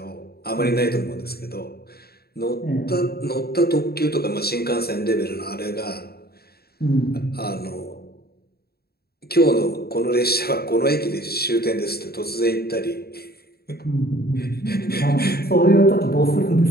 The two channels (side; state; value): right; late; 0.46 ms